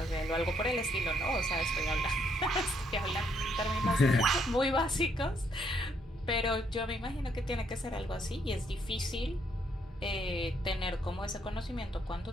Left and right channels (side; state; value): both; normal; correlation 0.72